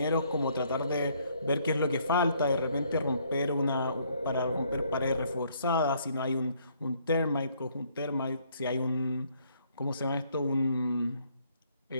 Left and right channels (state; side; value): inverted; both; correlation -0.67